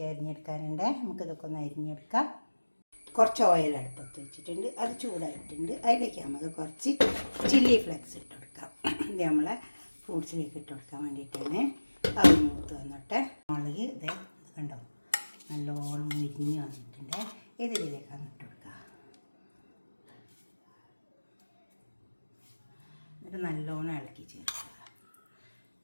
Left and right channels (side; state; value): both; inverted; correlation -1.00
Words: അരിഞ്ഞെടുക്കാനുണ്ട്. നമുക്കിതൊക്കെ ഒന്ന് അരിഞ്ഞെടുക്കാം. കുറച്ച് ഓയിൽ അടുപ്പത്ത് വെച്ചിട്ടുണ്ട്, അത് ചൂടായിട്ടുണ്ട്. അതിലേക്ക് നമുക്ക് കുറച്ച് ചില്ലി ഫ്ലെക്സ് ഇട്ട് കൊടുക്കാം. ഇത് നമ്മളെ ഫ്രൂട്ട്സിലേക്ക് ഇട്ട് കൊടുക്കാൻ വേണ്ടിയിട്ടാണ്. അത് മൂത്ത് വന്നോട്ടെ. മുളക് ഇത് കണ്ടോ, നല്ലോണം മുരിഞ്ഞ് വന്നിട്ടുണ്ട്. ഇതിലേക്കാണ് ഇട്ട് കൊടുക്കുക. എന്നിട്ട് നല്ലോണം ഇളക്കി ചേർക്കുക.